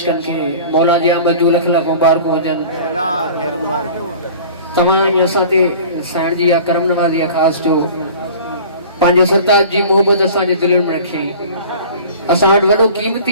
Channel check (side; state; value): both; inverted; correlation -0.43